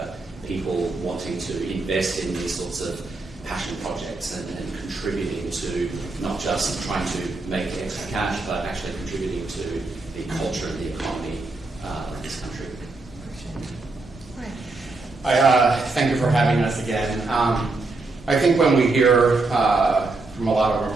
people wanting to invest in these sorts of passion projects and contributing to not just trying to make extra cash, but actually contributing to the culture and the economy of this country. Thank you for having us again. I think when we hear from a lot of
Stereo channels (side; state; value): left; quieter; 3.4 dB